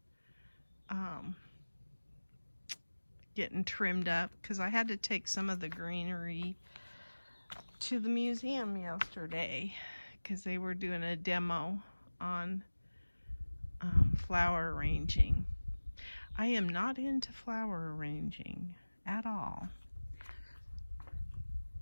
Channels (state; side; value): inverted; both; correlation -1.00